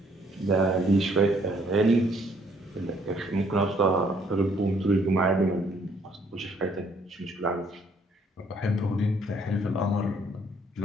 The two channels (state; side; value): normal; both; correlation 0.65